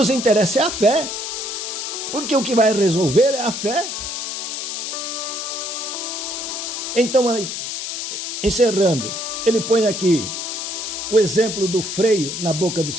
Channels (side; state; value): left; noise; hiss, 5 dB below the sound